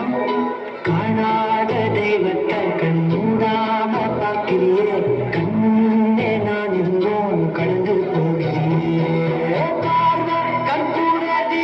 காணாத தெய்வத்தை கண் மூடாம பார்க்கிறியே கண்ணே நான் இருந்தோம் கடந்து போகிறேன் பார்வை கற்பூர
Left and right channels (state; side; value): identical; both; correlation 1.00